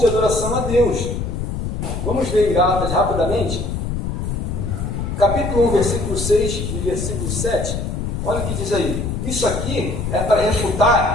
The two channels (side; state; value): left; noise; rumble, 3 dB below the sound